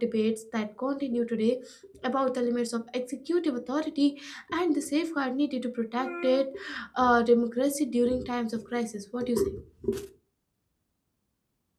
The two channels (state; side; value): identical; both; correlation 1.00